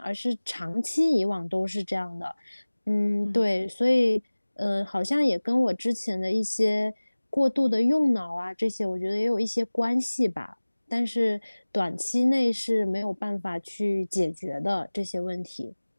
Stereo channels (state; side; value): inverted; both; correlation -1.00